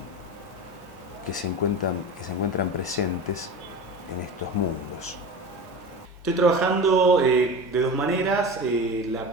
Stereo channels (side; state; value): both; normal; correlation 0.30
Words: que se encuentran presentes en estos mundos. Estoy trabajando de dos maneras. La